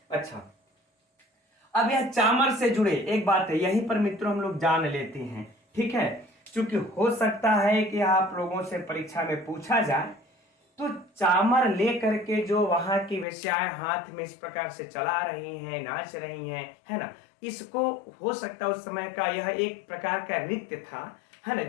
अच्छा, अब यह चामर से जुड़े एक बात है, यहीं पर मित्रों हम लोग जान लेते हैं। ठीक है, क्योंकि हो सकता है कि आप लोगों से परीक्षा में पूछा जाए तो चामर लेकर के जो वहां की वेश्याएं हाथ में इस प्रकार से चला रही हैं, नाच रही हैं, है ना, इसको हो सकता है उस समय का यह एक प्रकार का नृत्य था, है ना,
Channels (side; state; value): right; drops out; at 13.2 s